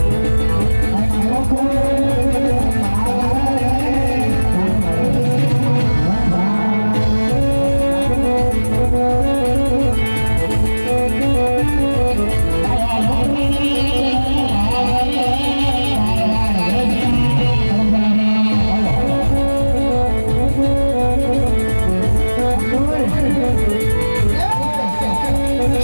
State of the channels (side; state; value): both; inverted; correlation -1.00